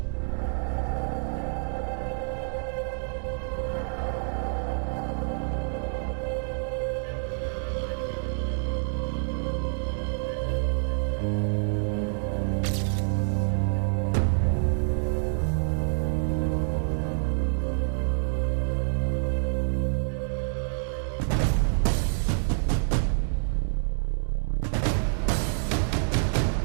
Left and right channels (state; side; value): silent; left; digital silence